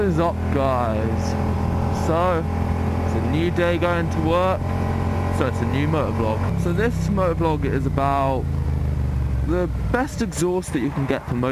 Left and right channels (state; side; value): identical; both; correlation 1.00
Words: up, guys? So it's a new day going to work, so it's a new motovlog. So this motovlog is about the best exhaust that you can get for